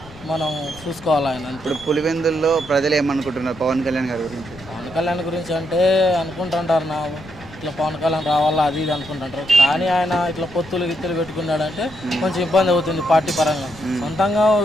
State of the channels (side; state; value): left; noise; rumble, 19 dB below the sound